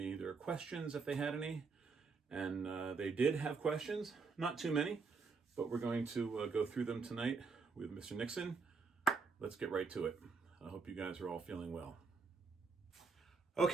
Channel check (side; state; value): left; quieter; 4.7 dB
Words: their questions if they had any. And they did have questions, not too many, but we're going to go through them tonight with Mr. Nixon. Let's get right to it. I hope you guys are all feeling well.